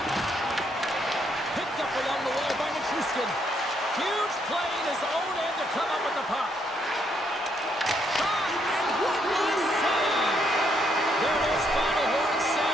Picked up along the wall by Nichushkin. Huge play in his own end to come up with the puck. Shot, and what a save! There it is, final horn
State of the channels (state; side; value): normal; both; correlation 0.73